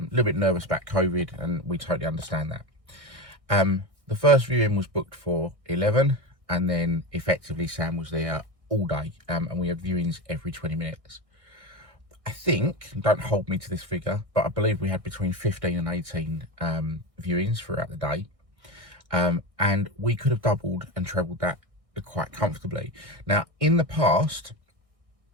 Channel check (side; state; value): left; late; 1.6 ms